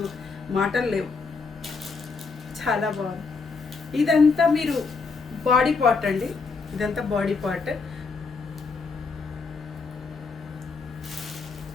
మాటలు లేవు, చాలా బాగుంది. ఇదంతా మీరు బాడీ పార్ట్ అండి, ఇదంతా బాడీ పార్ట్.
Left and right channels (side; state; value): right; quieter; 4.6 dB